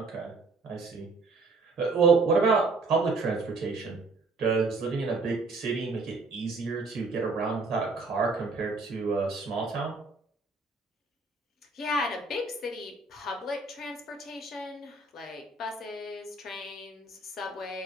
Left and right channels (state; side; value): quieter; left; 3.6 dB